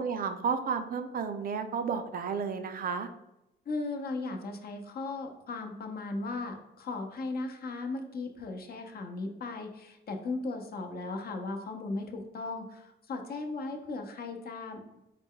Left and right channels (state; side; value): normal; both; correlation 0.32